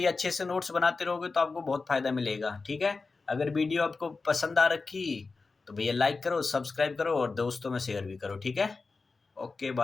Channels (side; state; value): right; quieter; 4.1 dB